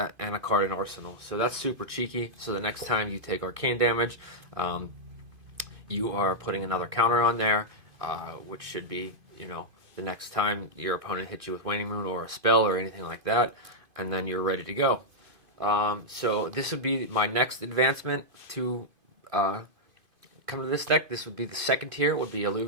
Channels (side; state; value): left; late; 2.5 ms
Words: card in Arsenal. So that's super cheeky. So the next time you take arcane damage, you are putting another counter on there, which should be, the next time your opponent hits you with Waning Moon or a spell or anything like that, and then you're ready to go. So this would be my next advancement to come to this deck. This would be the second tier, would be